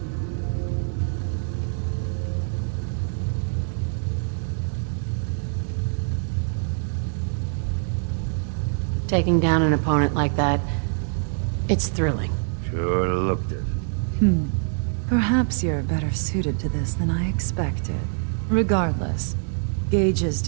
Taking down an opponent like that, it's thrilling. Sure looked it. Perhaps you're better suited to this than I expected. Regardless, Gage's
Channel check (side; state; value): left; silent; 61 dB below the other